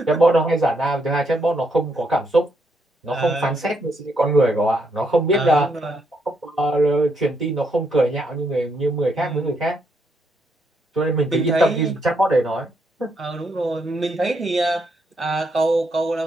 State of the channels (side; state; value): both; normal; correlation 0.76